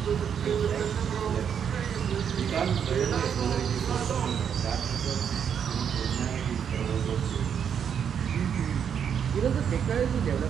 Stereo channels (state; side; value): quieter; left; 7.9 dB